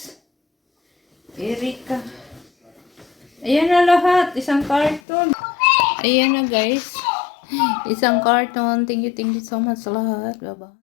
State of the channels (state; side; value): drops out; right; at 5.0 s